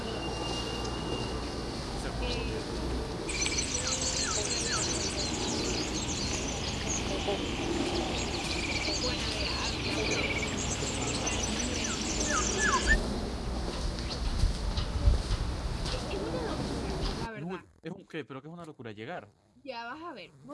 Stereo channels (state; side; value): identical; both; correlation 1.00